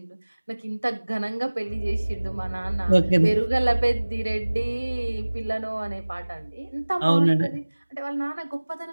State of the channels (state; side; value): inverted; both; correlation -1.00